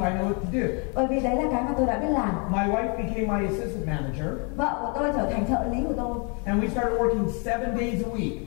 I know what to do. Bởi vì đấy là cái mà tôi đã biết làm. My wife became my assistant manager Vợ của tôi trở thành trợ lý của tôi. and we started working 7 days a week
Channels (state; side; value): quieter; right; 35.6 dB